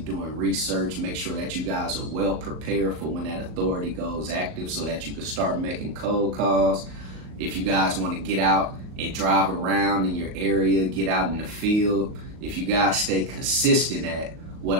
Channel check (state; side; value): late; left; 38 ms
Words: doing research, make sure that you guys are well prepared for when that authority goes active so that you can start making cold calls. If you guys want to get out and drive around in your area, get out in the field, if you guys stay consistent at what